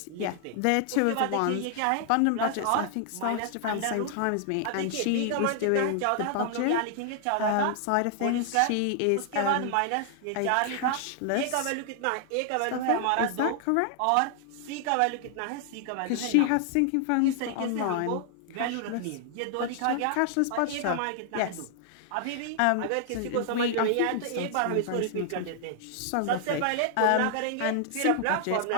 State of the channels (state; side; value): different; both; correlation 0.00